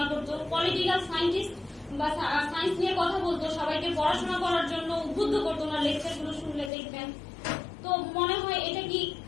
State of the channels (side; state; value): right; drops out; at 6.7 s